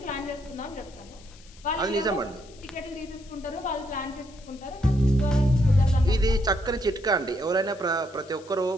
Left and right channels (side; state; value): left; noise; hiss, 24 dB below the sound